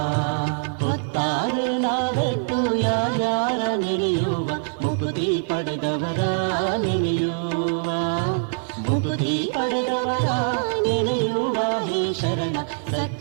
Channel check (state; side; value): silent; left; digital silence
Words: ಹೊತ್ತಾರೆ ನಾವೆಟ್ಟು ಯಾರ್ಯಾರ ನೆನೆಯುವ ಮುಕುತಿ ಪಡೆದವರ ನೆನೆಯುವ ಮುಕುತಿ ಪಡೆದವರ ನೆನೆಯುವ ಹೇ ಶರಣ